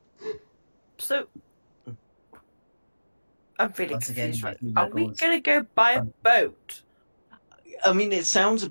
So, I'm really Once again, confused. Right? my Are we goals- going to go buy a boat? I mean, it sounds a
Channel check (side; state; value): both; inverted; correlation -1.00